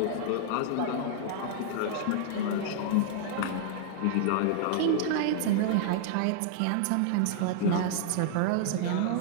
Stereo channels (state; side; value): different; both; correlation -0.01